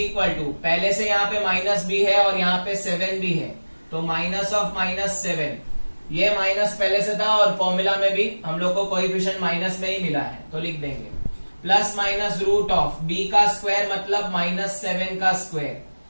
to, पहले से यहाँ पे -b है और यहाँ पे 7 भी है, तो माइनस ऑफ -7। ये माइनस पहले से था और फॉर्मूला में भी हम लोग को कोएफिशिएंट माइनस में ही मिला है, तो लिख देंगे plus minus root of b का स्क्वायर मतलब -7 का square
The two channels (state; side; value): inverted; both; correlation -1.00